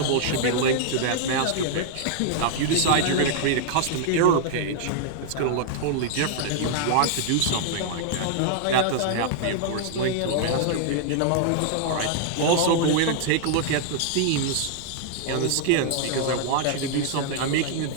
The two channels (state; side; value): different; both; correlation -0.01